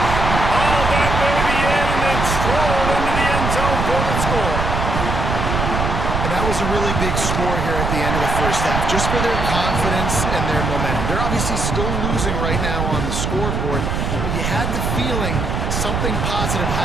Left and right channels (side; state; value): right; noise; rumble, 1 dB below the sound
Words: Hauled that baby in and then strolled into the end zone for the score. And that was a really big score here at the end of the 1st half, just for their confidence and their momentum. They're obviously still losing right now on the scoreboard, but you had the feeling something positive